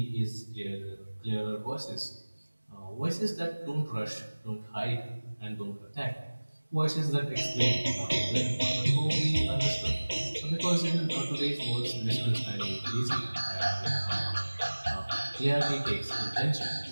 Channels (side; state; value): both; inverted; correlation -1.00